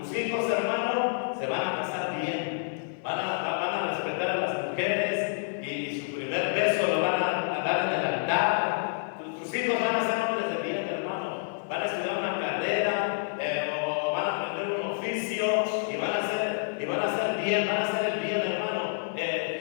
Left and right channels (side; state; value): right; silent; 57 dB below the other